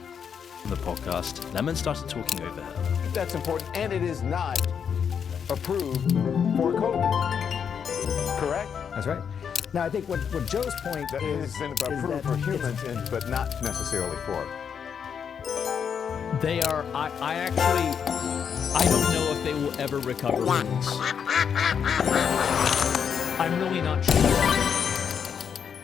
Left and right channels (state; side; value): quieter; right; 7.3 dB